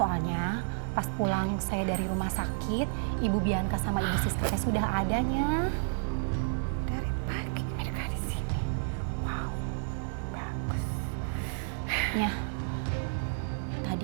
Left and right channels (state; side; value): silent; left; digital silence